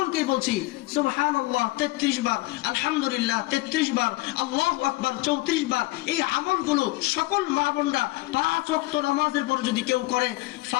বলছি সুবহানাল্লাহ 33 বার, আলহামদুলিল্লাহ 33 বার, আল্লাহু আকবার 34 বার। এই আমলগুলো সকল মা বোনরা 5 ওয়াক্ত নামাজের পর যদি কেউ করে,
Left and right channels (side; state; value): right; quieter; 20.5 dB